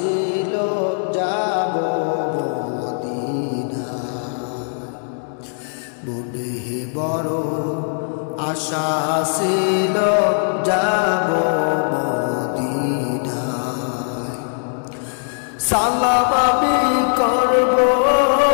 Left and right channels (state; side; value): silent; right; digital silence